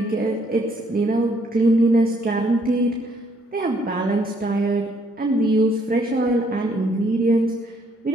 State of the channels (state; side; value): normal; both; correlation 0.68